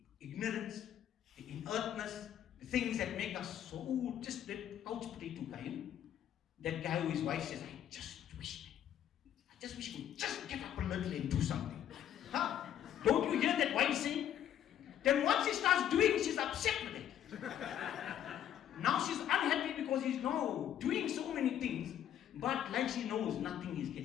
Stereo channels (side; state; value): right; quieter; 10.5 dB